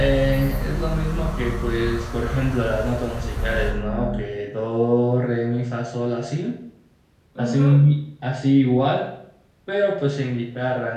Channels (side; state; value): both; identical; correlation 1.00